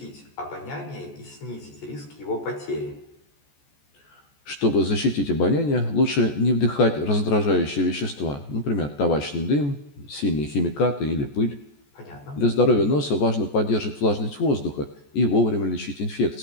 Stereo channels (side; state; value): right; late; 14 ms